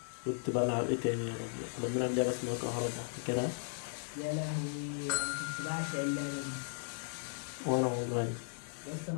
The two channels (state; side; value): silent; right; digital silence